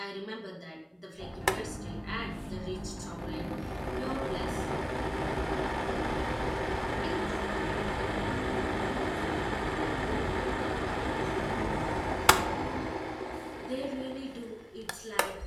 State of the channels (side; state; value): both; identical; correlation 1.00